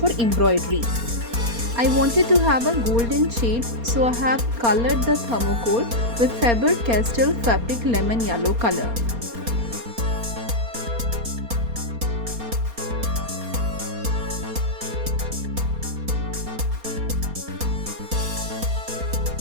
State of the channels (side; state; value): left; late; 4.3 ms